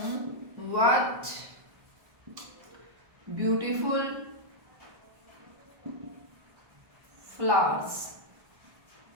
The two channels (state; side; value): late; left; 1.2 ms